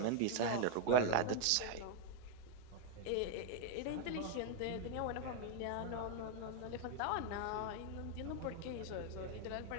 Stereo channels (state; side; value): different; both; correlation 0.01